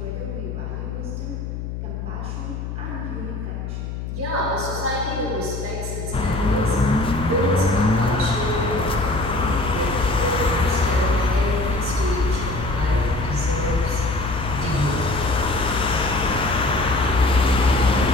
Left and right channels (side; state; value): left; noise; hum, 6 dB below the sound